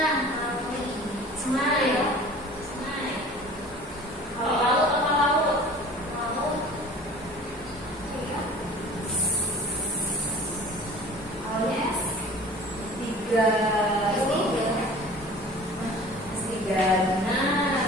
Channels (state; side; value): normal; both; correlation 0.44